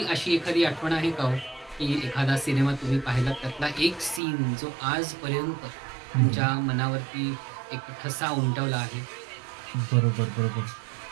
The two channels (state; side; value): drops out; left; at 4.2 s